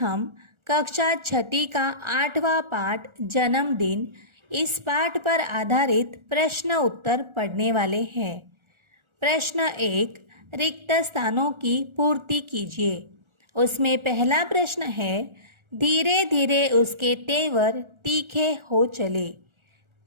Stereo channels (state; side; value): late; left; 1.4 ms